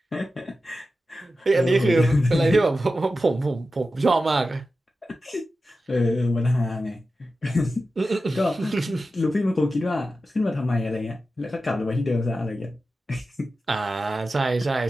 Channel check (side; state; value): both; normal; correlation 0.92